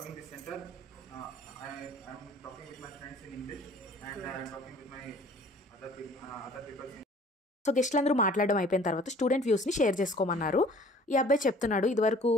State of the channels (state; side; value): normal; both; correlation 0.52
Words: this center, I'm talking with my friends in English, and I'm talking with my other people. So గెస్ట్లందరూ మాట్లాడడం అయిపోయిన తర్వాత student వ్యూస్ని share చేసుకోమన్నారు. ఈ అబ్బాయి చెప్తున్నాడు, ఇదివరకు